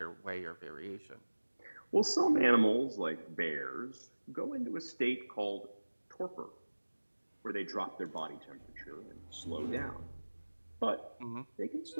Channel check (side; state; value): both; inverted; correlation -1.00